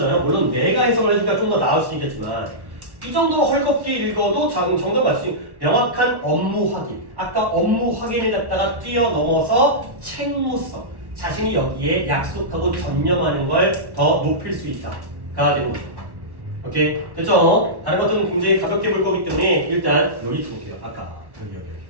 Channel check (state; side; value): late; left; 1.2 ms